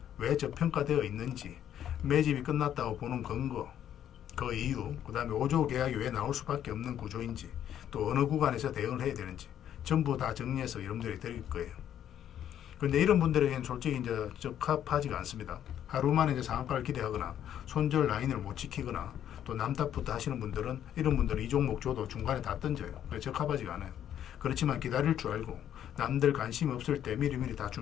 왜 저평가되어 있는지, 매집이 끝났다고 보는 근거, 그 이유, 그 다음에 5조 계약이 왜 나올 수밖에 없는 구조인지, 또 어느 구간에서 대응을 해야 되는지 전부 다 정리해서 여러분들이 드릴 거예요. 그런데 이런 분들에게는 솔직히 이제 적합하지가 않습니다. 하루 만에 이제 상한가를 기대하거나 손절 라인을 못 지키거나 또 남탓부터 하시는 분들은, 이런 분들은 이 종목 줘도 중간에 다 던져요. 적합하지가 않아요. 그렇지만 기다릴 줄 알고 남들 관심 없을 때 미리미리 다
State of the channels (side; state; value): right; quieter; 10.3 dB